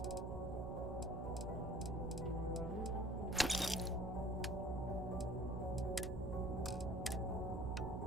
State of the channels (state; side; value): noise; right; hum, 4 dB below the sound